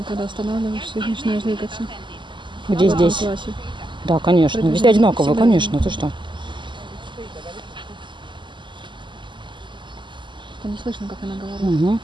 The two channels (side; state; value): left; late; 0.23 ms